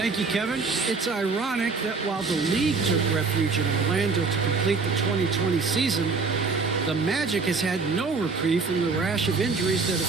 you, Kevin. It's ironic that while the league took refuge in Orlando to complete the 2020 season, the Magic has had no reprieve from the rash of injuries that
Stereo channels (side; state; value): left; quieter; 4.5 dB